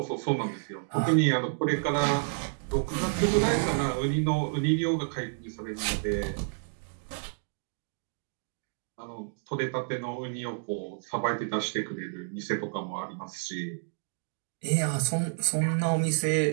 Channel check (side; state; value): left; silent; digital silence